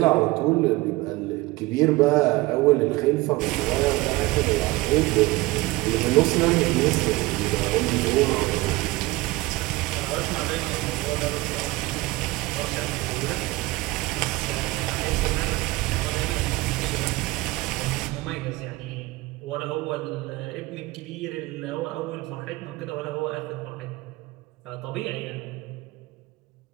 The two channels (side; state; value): left; quieter; 20.4 dB